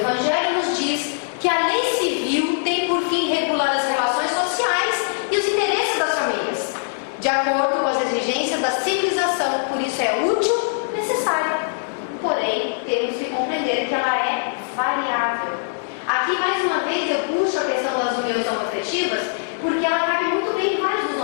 nos diz que a lei civil tem por fim regular as relações sociais e os interesses das famílias, de acordo com as exigências da civilização, por isso é útil, necessária. Porém, temos que compreender que ela é variável. Aqui, mais uma vez, eu puxo a questão das uniões homoafetivas, porque ela cabe muito bem em vários dos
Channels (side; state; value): right; silent; 64 dB below the other